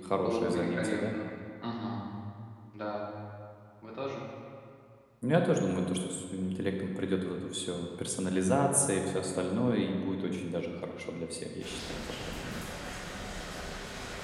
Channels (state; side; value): identical; both; correlation 1.00